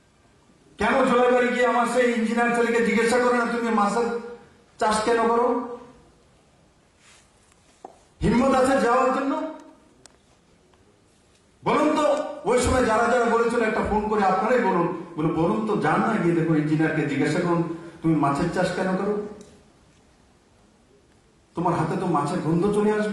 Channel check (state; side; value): identical; both; correlation 1.00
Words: কেন জলাইবাড়ি গিয়ে আমার সেই ইঞ্জিনিয়ার ছেলেকে জিজ্ঞাসা করে না তুমি মাছের চাষ কেন করো? হিম্মত আছে যাওয়ার জন্য? বলুন তো, ওই সময় যারা যারা বলেছিল একটা ফোন করে আপনারাই বলুন তো, যান না গিয়ে দেখো ইঞ্জিনিয়ারকে জিজ্ঞাসা করুন তুমি মাছের চাষ কেন করো? তোমার হাতে তো মাছের গন্ধ চলে